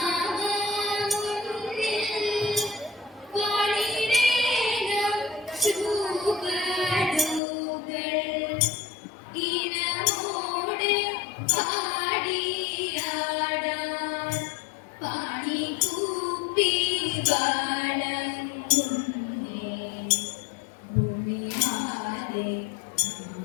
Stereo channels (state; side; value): drops out; right; at 7.4 s